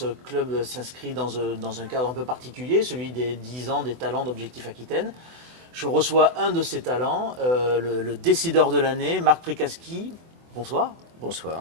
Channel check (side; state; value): left; late; 24 ms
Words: club s'inscrit dans un cadre un peu particulier, celui des 10 ans des talents d'Objectif Aquitaine. Je reçois un de ces talents, le décideur de l'année, Marc Prikaski. Bonsoir.